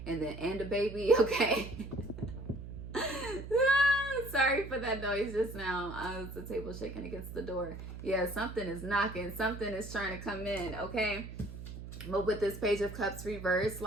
and a baby, okay? Sorry for that noise just now. It's the table shaking against the door. Yeah, something is knocking. Something is trying to come in, okay? But with this Page of Cups reversed,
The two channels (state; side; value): noise; right; hum, 11 dB below the sound